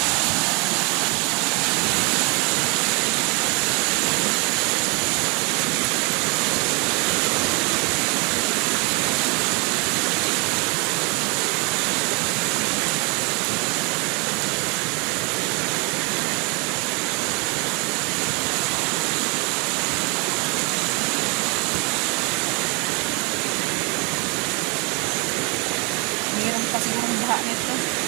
Mayroon pa sigurong baha nito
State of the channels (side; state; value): left; quieter; 31.9 dB